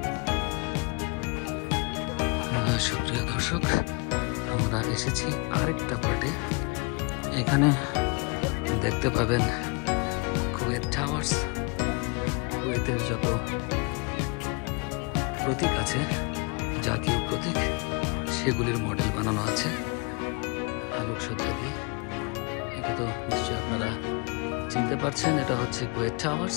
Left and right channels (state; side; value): quieter; right; 31.1 dB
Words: সুপ্রিয় দর্শক, আমরা এসেছি আরেকটা পার্টে। এখানে দেখতে পাবেন কুয়েত টাওয়ার্স, কুয়েতের যত প্রতীক আছে, জাতীয় প্রতীক, সেগুলির মডেল বানানো আছে আলোকসজ্জা দিয়ে। এটা তো নিশ্চয়ই আপনারা চিনতে পারছেন, এটা হচ্ছে কুয়েত টাওয়ার্স।